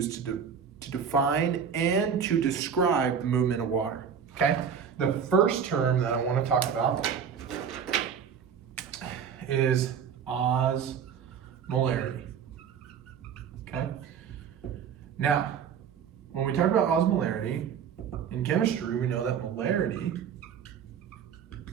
to define and to describe the movement of water, okay? The first term that I want to talk about is osmolarity, okay? Now, when we talk about osmolarity, in chemistry, we know that molarity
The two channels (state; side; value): quieter; left; 7.3 dB